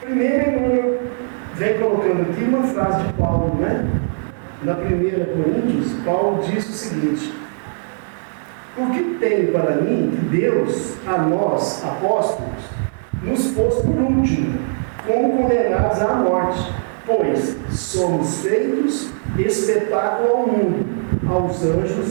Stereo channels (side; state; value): left; silent; digital silence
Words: Primeiro, Emmanuel vem colocando aqui uma frase de Paulo, né? Na 1 Coríntios, Paulo diz o seguinte: porque tem para mim que Deus, a nós, apóstolos, nos pôs por último, como condenados à morte, pois somos feitos espetáculo ao mundo, aos